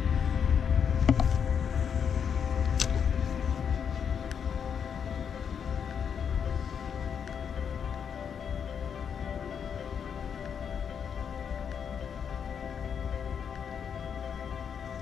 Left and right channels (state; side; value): quieter; right; 7.4 dB